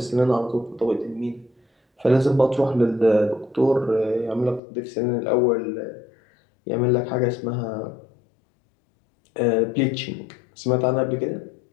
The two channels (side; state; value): right; drops out; at 4.6 s